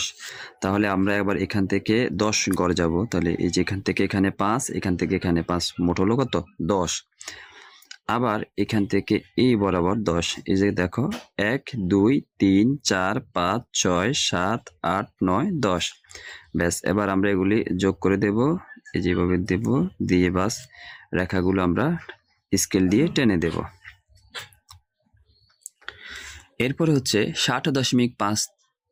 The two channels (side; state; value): both; identical; correlation 1.00